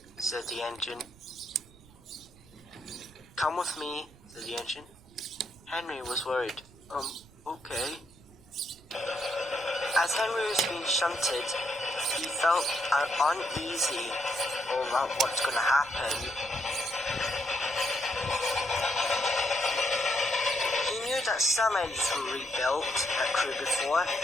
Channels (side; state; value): right; noise; rumble, 24 dB below the sound